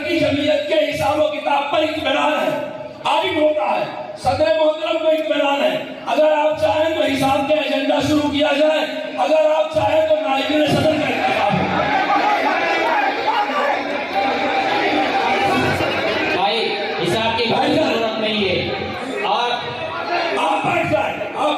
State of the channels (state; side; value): identical; both; correlation 1.00